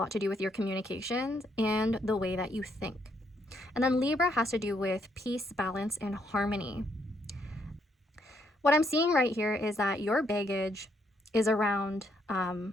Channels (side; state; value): both; normal; correlation 0.73